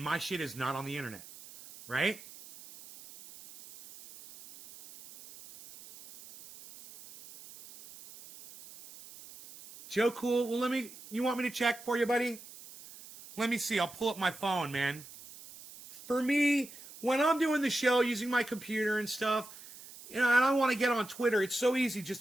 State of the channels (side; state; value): right; noise; hiss, 18 dB below the sound